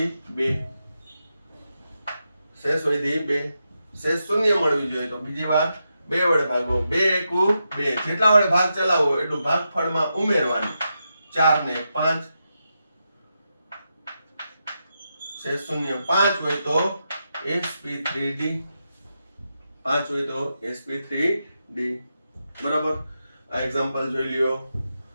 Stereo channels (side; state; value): both; inverted; correlation -0.86